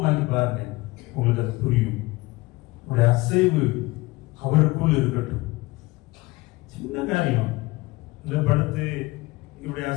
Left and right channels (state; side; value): quieter; right; 21.4 dB